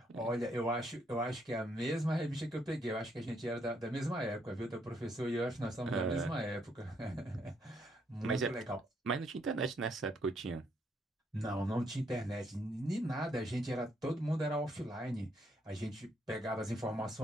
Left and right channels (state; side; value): normal; both; correlation 0.73